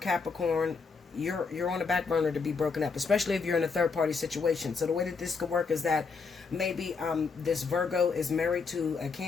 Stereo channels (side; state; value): right; quieter; 4.9 dB